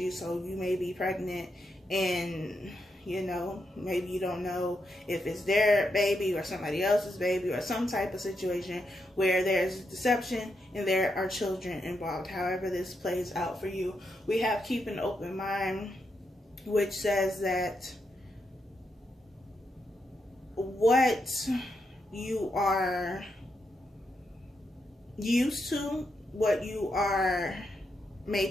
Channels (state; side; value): normal; both; correlation 0.82